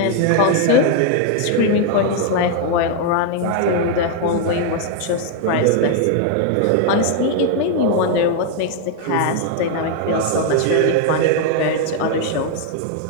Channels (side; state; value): both; different; correlation 0.00